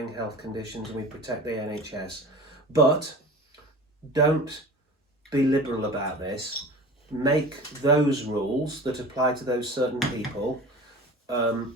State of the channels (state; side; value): normal; both; correlation 0.37